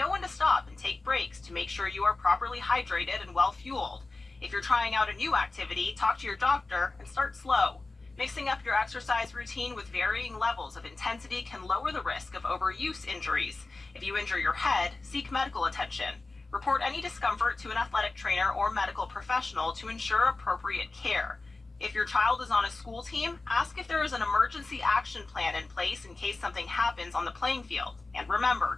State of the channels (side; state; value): right; quieter; 3.4 dB